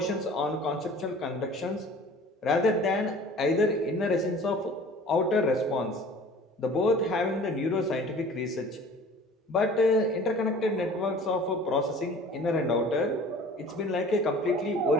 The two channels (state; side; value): normal; both; correlation 0.46